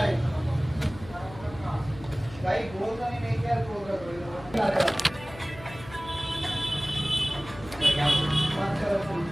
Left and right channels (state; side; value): noise; left; hum, 16 dB below the sound